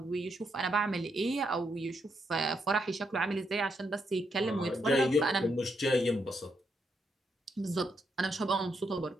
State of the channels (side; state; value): both; normal; correlation 0.79